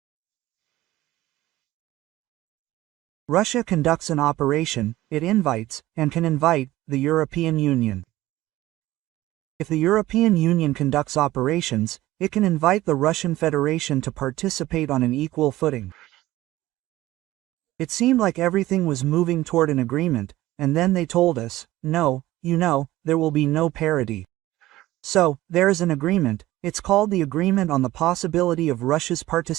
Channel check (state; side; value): quieter; left; 16.4 dB